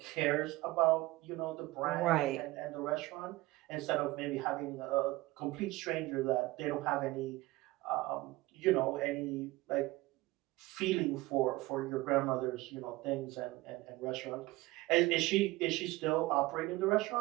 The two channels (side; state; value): left; quieter; 19.6 dB